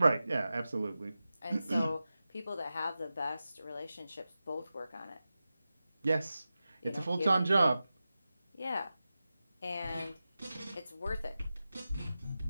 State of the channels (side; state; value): both; inverted; correlation -0.94